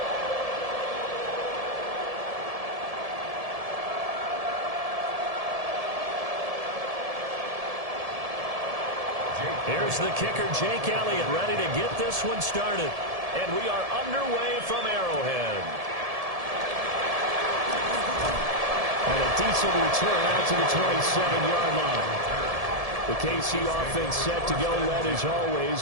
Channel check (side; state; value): left; late; 1.7 ms